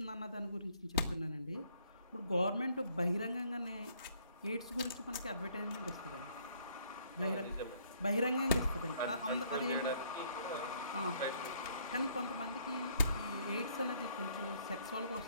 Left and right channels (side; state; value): both; inverted; correlation -0.65